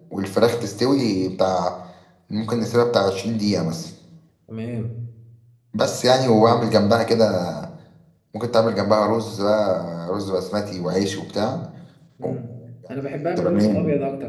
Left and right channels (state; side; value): identical; both; correlation 1.00